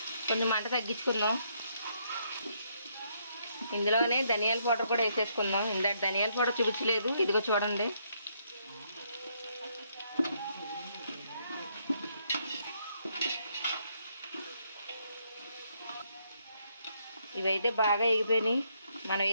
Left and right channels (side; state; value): both; inverted; correlation -0.73